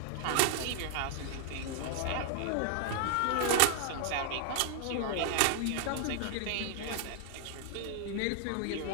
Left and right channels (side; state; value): both; different; correlation 0.00